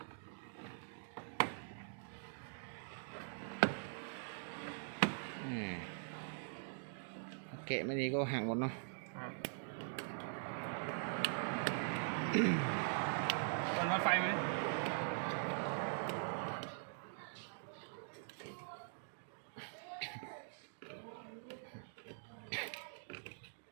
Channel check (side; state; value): left; silent; digital silence